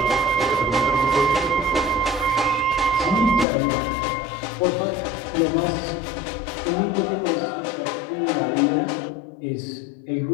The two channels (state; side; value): drops out; right; at 3.5 s